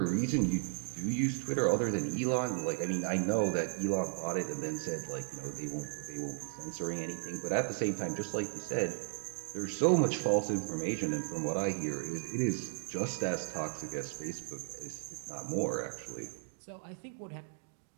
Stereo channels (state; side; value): silent; left; digital silence